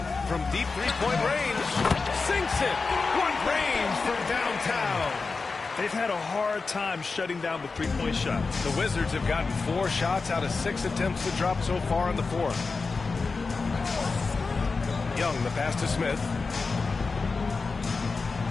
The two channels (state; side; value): quieter; right; 4.3 dB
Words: From deep three-point range. Sinks it. What range from downtown. They've had a hard time shutting down the three-point shots. The Wizards have gotten 4 shots out of 6 attempts to drop so far in the fourth. Young, the pass to Smith.